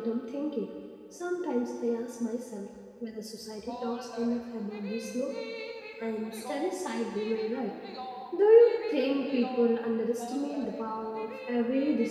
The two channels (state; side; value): identical; both; correlation 1.00